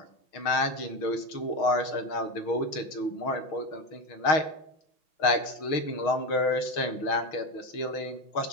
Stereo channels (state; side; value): late; right; 6.3 ms